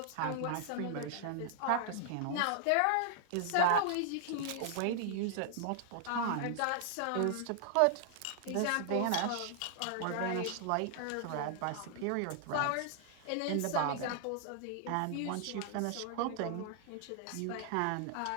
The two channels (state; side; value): different; both; correlation 0.00